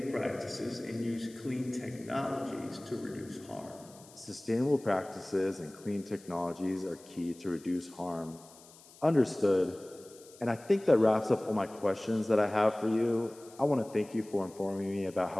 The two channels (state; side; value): noise; left; hiss, 23 dB below the sound